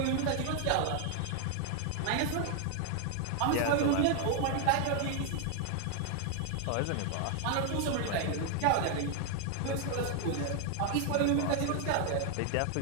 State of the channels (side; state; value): both; different; correlation 0.00